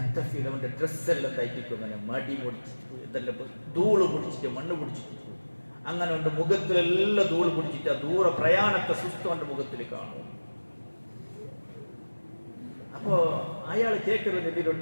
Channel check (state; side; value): inverted; both; correlation -1.00